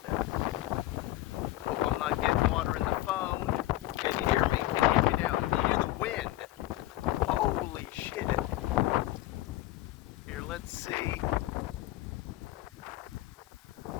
that. Hope I'm not getting water in the phone. Can you hear me? Can you hear me now? Can you hear the wind? Holy shit. Here, let's see.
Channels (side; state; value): right; quieter; 16.3 dB